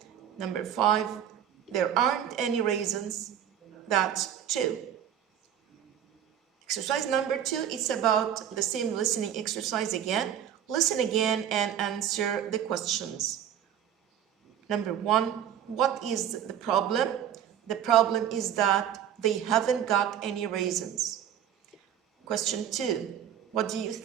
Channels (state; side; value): quieter; left; 9.8 dB